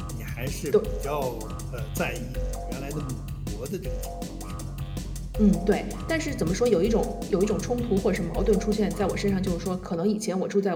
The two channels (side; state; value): both; identical; correlation 1.00